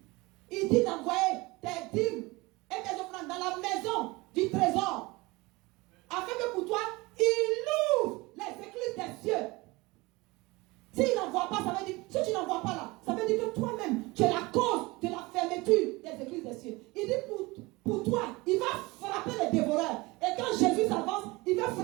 Il dit d'envoyer tes dîmes et tes offrandes dans la maison du trésor. Afin que pour toi, il ouvre les écluses des cieux. S'il n'envoie pas, ça veut dire, si tu n'envoies pas là, ça veut dire que toi-même, tu es la cause de la fermeture des écluses des cieux. Il dit pour toi, il va frapper les dévoreurs. Et quand Jésus s'avance, il va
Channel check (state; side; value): quieter; left; 22.9 dB